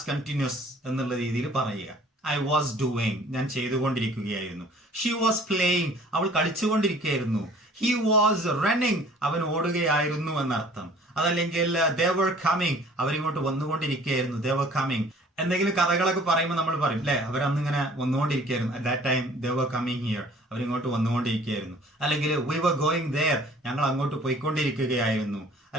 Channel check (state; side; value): normal; both; correlation 0.52